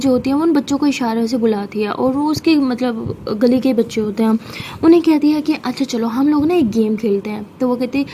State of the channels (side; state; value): both; identical; correlation 1.00